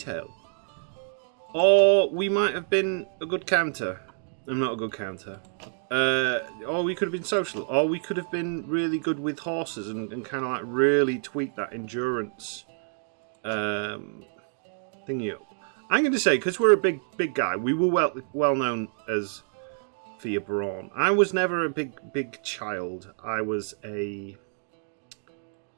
Or we might have been a good counter. I'm not a good counter. Or we could have been social. Or we could have been really good with horses and kind of like really tweak that endurance thingy up. I'm going to say, because we're a big guy, we were well known as for your brawn. I was never a big child. I was a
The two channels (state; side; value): silent; left; digital silence